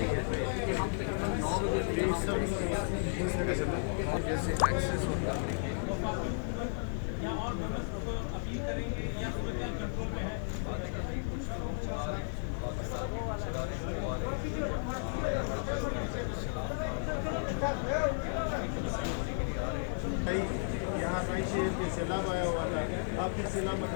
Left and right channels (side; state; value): right; silent; digital silence